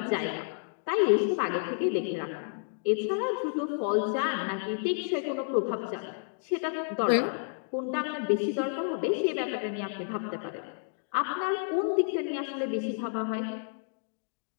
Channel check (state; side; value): silent; right; digital silence